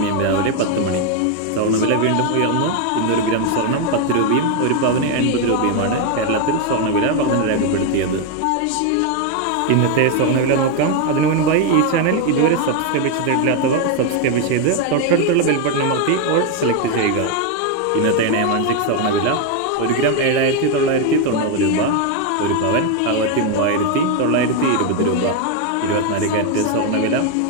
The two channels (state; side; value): different; both; correlation 0.01